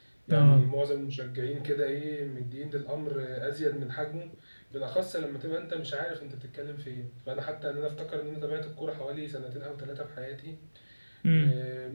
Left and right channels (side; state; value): both; inverted; correlation -1.00